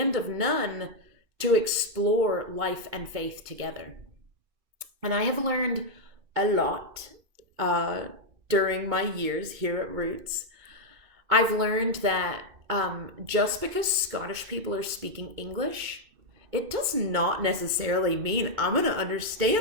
of none to explore life and faith together. And I have learned a lot during my years here at Roots. I've learned that just because Scottish people are speaking English, it does not necessarily mean I'm going to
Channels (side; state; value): left; late; 2.3 ms